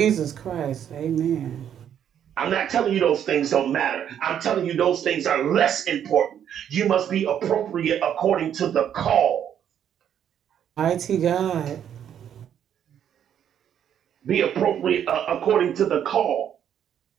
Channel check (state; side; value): quieter; left; 9.4 dB